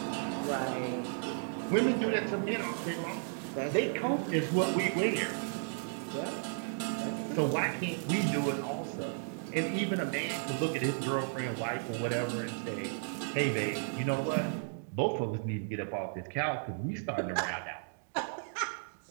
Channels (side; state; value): left; silent; digital silence